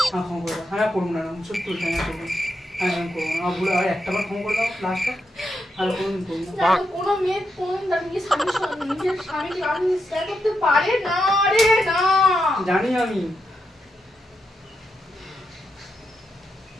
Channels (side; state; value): both; normal; correlation 0.83